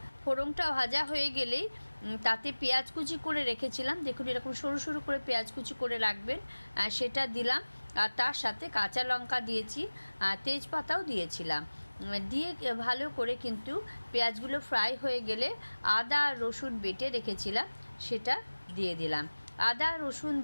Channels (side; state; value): both; inverted; correlation -1.00